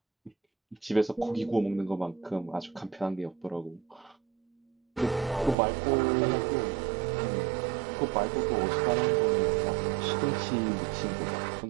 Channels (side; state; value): left; drops out; at 5.6 s